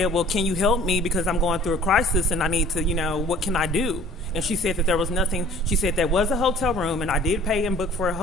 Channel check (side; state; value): both; normal; correlation 0.51